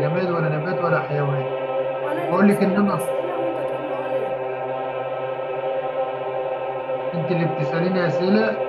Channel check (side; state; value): both; identical; correlation 1.00